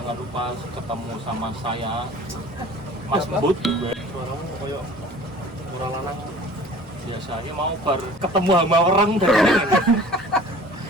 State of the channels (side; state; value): both; normal; correlation 0.45